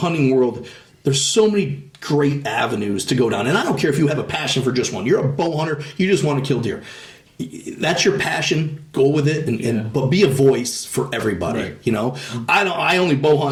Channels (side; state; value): both; identical; correlation 1.00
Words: world. There's so many great avenues to go down. And I don't care if you have a passion for just one. You're a bow hunter. You just want to kill deer. That's your passion. Go with it, but be a voice for everybody. Right. I only bow